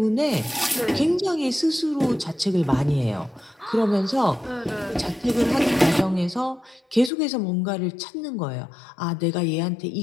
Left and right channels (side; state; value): right; drops out; at 7.1 s